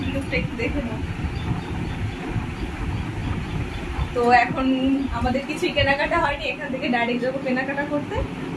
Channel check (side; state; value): both; identical; correlation 1.00